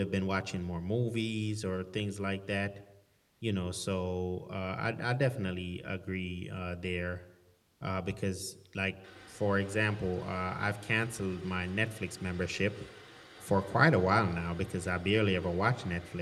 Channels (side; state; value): both; identical; correlation 1.00